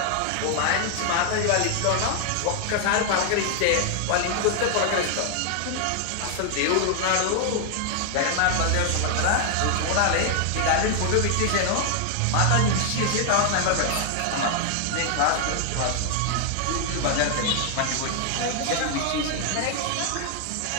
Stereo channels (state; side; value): different; both; correlation 0.00